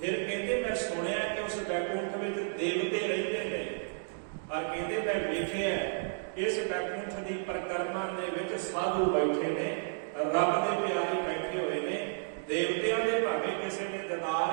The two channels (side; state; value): left; silent; digital silence